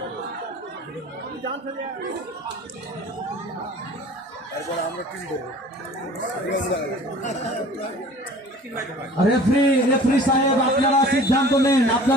তারপর আমরা টিম দেবো। রেফারি সাহেব আপনারা সিদ্ধান্ত নেন।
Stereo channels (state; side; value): normal; both; correlation 0.46